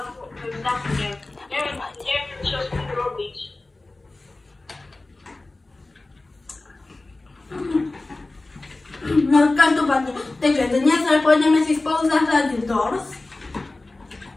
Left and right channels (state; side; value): quieter; right; 3.1 dB